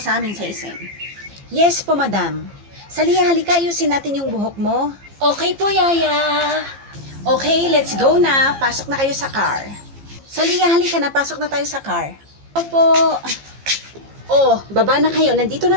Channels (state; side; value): late; left; 15 ms